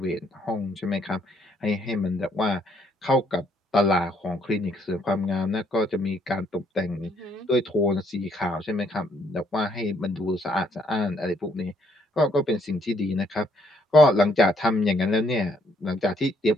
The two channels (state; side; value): normal; both; correlation 0.69